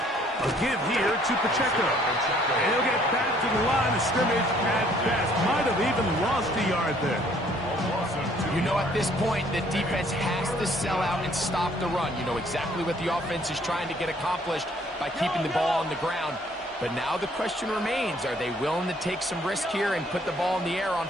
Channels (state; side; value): normal; both; correlation 0.61